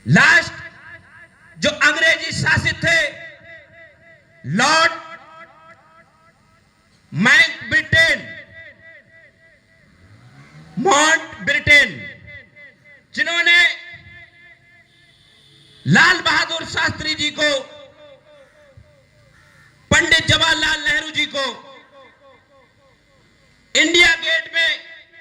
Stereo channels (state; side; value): identical; both; correlation 1.00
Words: लास्ट जो अंग्रेजी शासित थे, लॉर्ड माउंटबेटन, जिन्होंने लाल बहादुर शास्त्री जी को, पंडित जवाहरलाल नेहरू जी को इंडिया गेट में